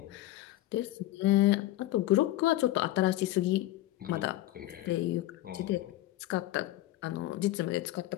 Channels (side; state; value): right; quieter; 15.7 dB